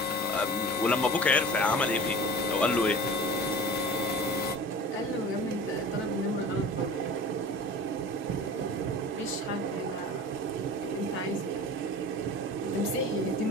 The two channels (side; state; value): both; normal; correlation 0.39